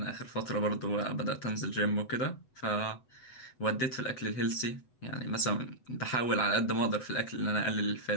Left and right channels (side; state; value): right; late; 8.0 ms